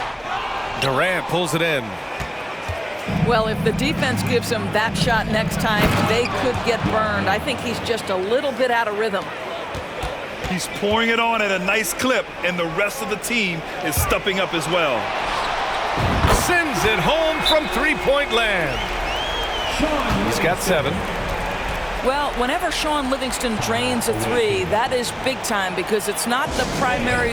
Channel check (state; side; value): identical; both; correlation 1.00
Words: Durant pulls it in. Well, if the defense gives him that shot next time, they could get burned. I think he's just a little bit out of rhythm. He's pouring it on at a nice clip, and the rest of the team is stepping up as well. Sends it home from three-point land. He's got 7. Well, whenever Sean Livingston drains a 3, that is big time because it's not the